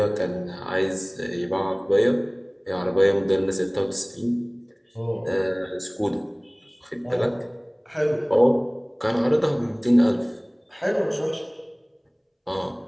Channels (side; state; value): both; identical; correlation 1.00